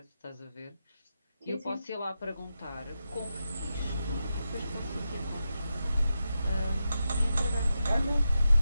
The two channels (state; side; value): inverted; both; correlation -0.88